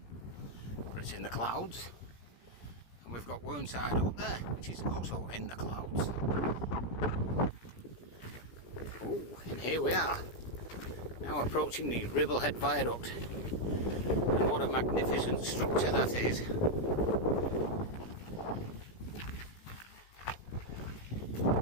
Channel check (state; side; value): late; right; 17 ms